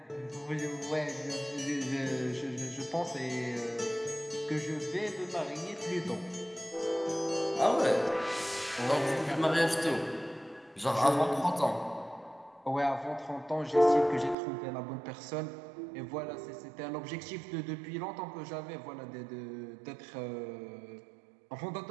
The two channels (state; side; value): drops out; left; at 14.4 s